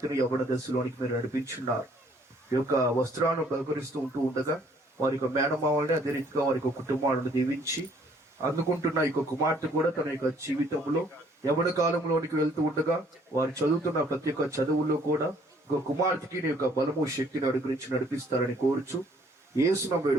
యవ్వన దశలోనికి మీరు నడిపించున్నారు. ఈ యొక్క వస్త్రాలను బహుకరిస్తూ ఉండగా వారి యొక్క మేనమావల్ని అదే రీతిగా వారి యొక్క కుటుంబాలను దీవించి అందుకుంటున్న ఈ యొక్క కుమార్తె కూడా తన యొక్క జీవితంలో యవ్వన కాలంలోనికి వెళ్తూ ఉండగా వారు చదువుతున్న ప్రతి ఒక్క చదువుల్లో కూడా ఒక కుమార్తెకి నీ యొక్క బలము శక్తిని అనుగ్రహించి నడిపిస్తారని కోరుచు యేసును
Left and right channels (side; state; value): both; normal; correlation 0.61